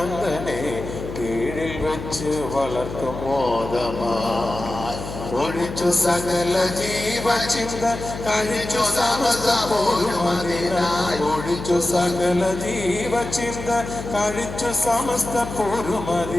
കീഴിൽ വെച്ച് വളർത്തും മോദമായി ഒഴിച്ചു സകല ജീവചിന്ത കഴിച്ചു സമസ്ത പോരുമതിനായി ഒഴിച്ചു സകല ജീവചിന്ത കഴിച്ചു സമസ്ത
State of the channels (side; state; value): left; noise; hum, 9 dB below the sound